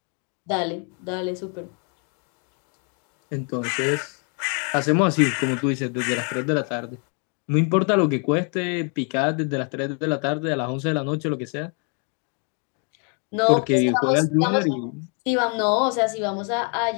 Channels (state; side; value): quieter; right; 39.3 dB